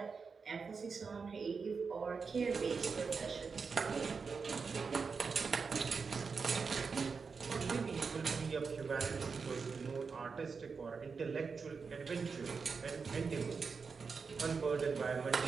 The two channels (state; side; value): quieter; left; 5.2 dB